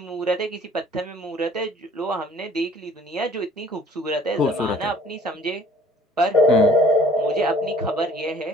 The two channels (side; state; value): both; normal; correlation 0.53